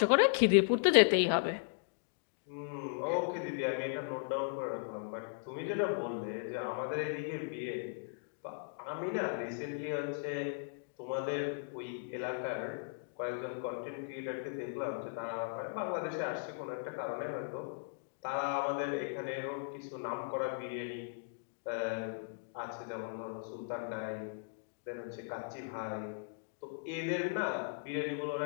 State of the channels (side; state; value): right; silent; digital silence